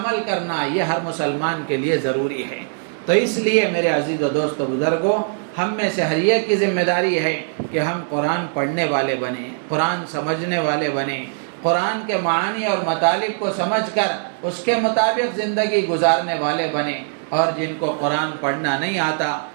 کرنا یہ ہر مسلمان کے لیے ضروری ہے۔ تو اس لیے میرے عزیز و دوست و بزرگوں، ہم میں سے ہر ایک کی ذمہ داری ہے کہ ہم قرآن پڑھنے والے بنیں، قرآن سمجھنے والے بنیں، قرآن کے معانی اور مطالب کو سمجھ کر اس کے مطابق زندگی گزارنے والے بنیں۔ اور جن کو قرآن پڑھنا نہیں آتا،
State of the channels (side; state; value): left; silent; digital silence